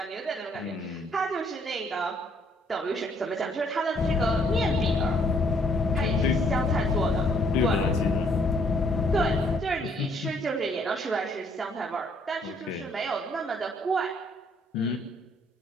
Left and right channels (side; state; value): both; normal; correlation 0.66